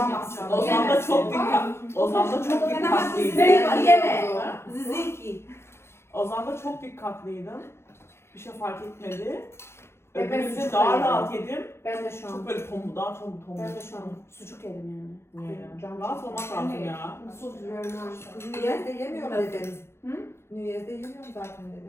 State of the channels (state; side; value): late; right; 0.12 ms